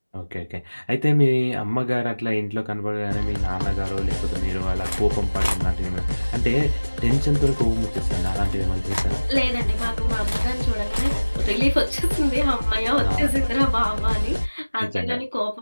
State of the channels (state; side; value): inverted; both; correlation -1.00